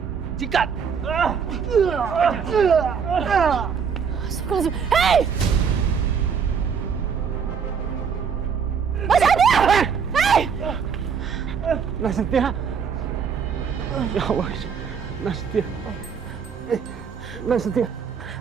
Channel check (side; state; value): left; quieter; 6.6 dB